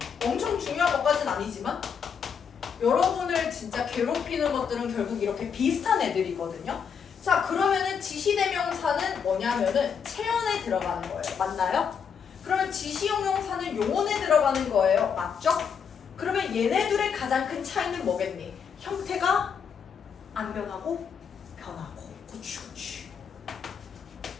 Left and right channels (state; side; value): quieter; right; 6.8 dB